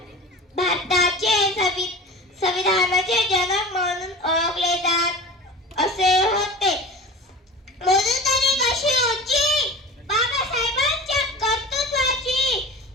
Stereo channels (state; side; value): normal; both; correlation 0.35